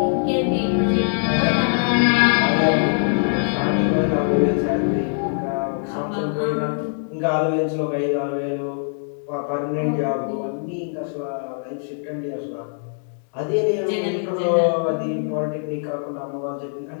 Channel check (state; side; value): silent; right; digital silence